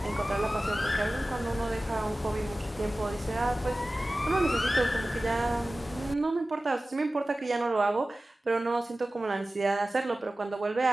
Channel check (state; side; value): normal; both; correlation 0.96